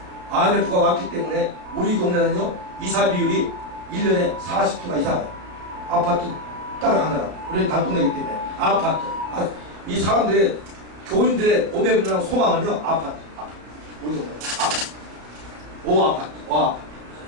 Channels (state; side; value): late; left; 33 ms